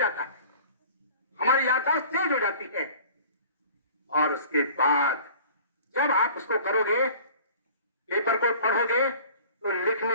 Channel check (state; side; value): inverted; both; correlation -0.46